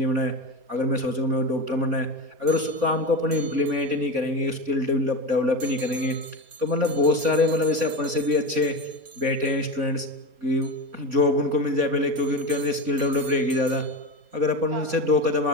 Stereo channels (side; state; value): left; late; 4.3 ms